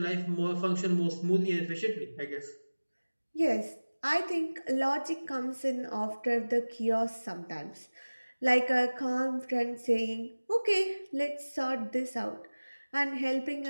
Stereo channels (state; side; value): inverted; both; correlation -1.00